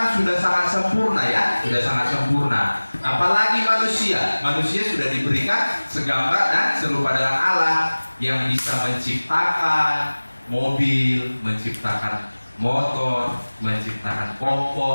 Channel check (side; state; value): both; inverted; correlation -1.00